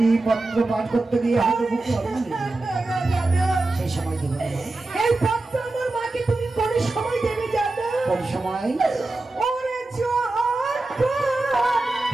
পত্র পাঠ করতে গিয়ে হয়তো বুকে সেই সময় দেবো। এই পত্র আমার মাকে তুমি কোন সময় দেবে জানো? কোন সময়?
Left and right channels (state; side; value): quieter; left; 3.0 dB